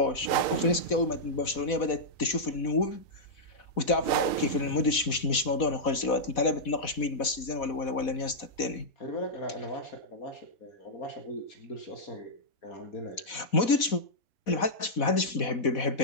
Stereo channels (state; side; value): late; right; 4.1 ms